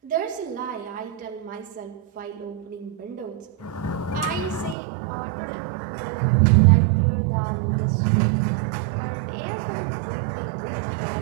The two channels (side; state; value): left; drops out; at 4.8 s